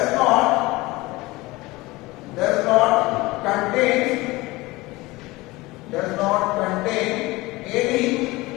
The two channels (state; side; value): quieter; right; 21.1 dB